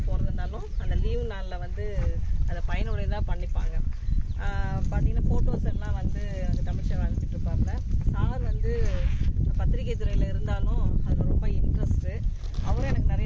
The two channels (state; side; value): identical; both; correlation 1.00